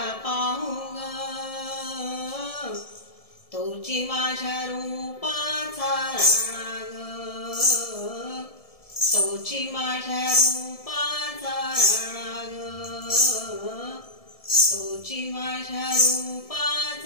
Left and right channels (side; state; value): right; late; 1.7 ms